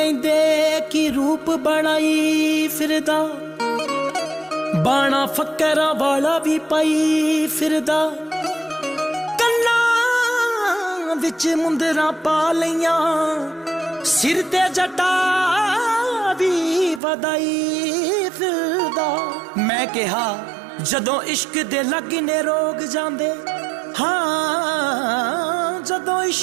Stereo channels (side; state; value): left; drops out; at 17.0 s